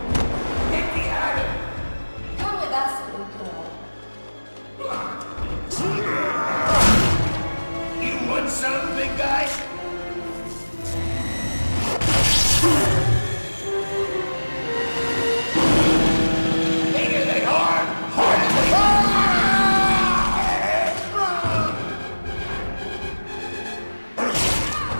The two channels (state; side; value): inverted; both; correlation -1.00